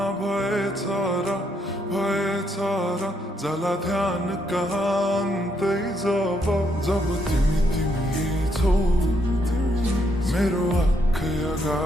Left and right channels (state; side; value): normal; both; correlation 0.75